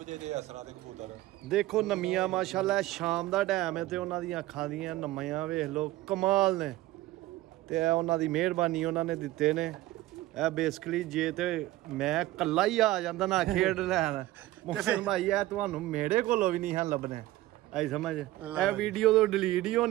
ਜੇ ਦੇ ਅਸਰਾਂ ਦੇ ਕਬੂਤਰ। ਦੇਖੋ ਨਮੀਆਂ ਮਾਸ਼ਾਅੱਲਾ, ਸ਼ਾਮ ਦਾ ਟਾਈਮ ਹੈ ਤੇ ਉਹਨਾਂ ਦੀਆਂ ਅੱਖਾਂ ਦੀਆਂ ਨਮੀਆਂ ਵੇਖ ਲਓ ਕਮਾਲ ਨੇ। ਤੇ ਇਹ ਉਹਨਾਂ ਦੀ ਮਿਹਰਬਾਨੀ ਉਹਨਾਂ ਨੇ ਦਿੱਤੇ ਨੇ। ਇਹ ਬੇਸਿਕਲੀ ਜੇ ਤੇ ਮੈਂ ਕੱਲਾ ਹੀ ਆ ਜਾਂਦਾ ਨਾ ਖੇਡ ਲੈਣ ਮੁਹਸਨ ਭਾਈ, ਇਹ ਤੁਹਾਨੂੰ ਮੇਰੇ ਕੋਲੋਂ ਵੀ ਨਹੀਂ ਹਨ ਲੱਭਣੇ। ਆਈ ਸਮਝ, ਇਹ ਵੀਡੀਓ ਤੋਂ ਡਿਲੀਟ ਹੀ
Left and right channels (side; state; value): left; quieter; 16.9 dB